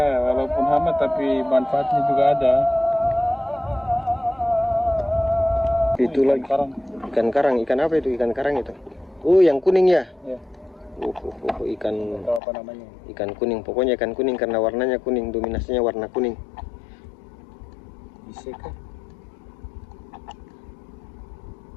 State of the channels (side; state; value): right; drops out; at 12.4 s